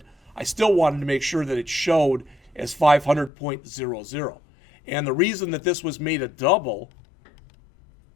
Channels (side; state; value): right; drops out; at 3.3 s